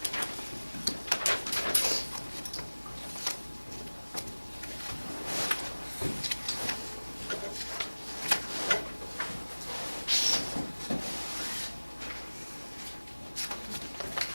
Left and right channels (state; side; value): inverted; both; correlation -1.00